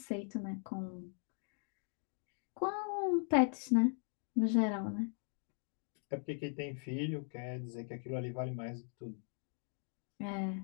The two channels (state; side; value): silent; right; 51 dB below the other